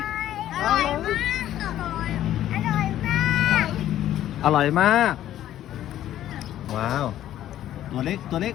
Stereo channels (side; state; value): right; quieter; 12.4 dB